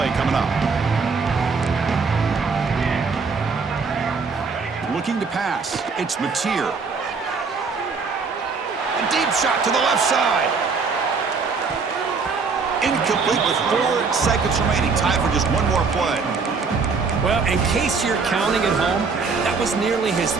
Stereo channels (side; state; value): left; quieter; 4.9 dB